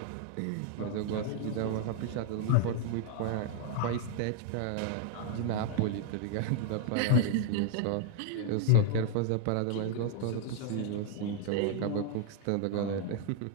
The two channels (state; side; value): different; both; correlation 0.00